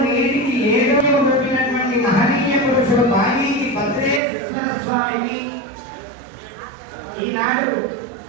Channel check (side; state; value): left; drops out; at 4.2 s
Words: నేటికి ఏదో పెట్టినటువంటి మహనీయ పురుషుడు బాలీకి భద్రేశ్వర స్వామిని ఈనాడు